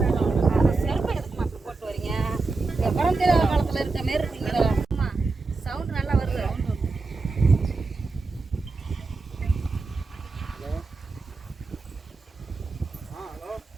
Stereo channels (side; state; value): left; quieter; 3.9 dB